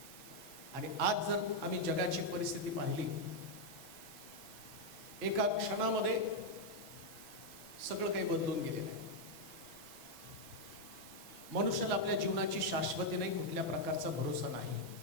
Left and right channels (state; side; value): late; right; 6.1 ms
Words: आणि आज जर आम्ही जगाची परिस्थिती पाहिली, एका क्षणामध्ये सगळं काही बदलून गेले आहे। मनुष्याला आपल्या जीवनाची शाश्वती नाही, कुठल्या प्रकारचा भरोसा नाही।